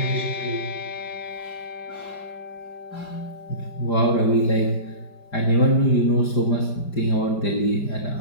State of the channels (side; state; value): right; late; 5.0 ms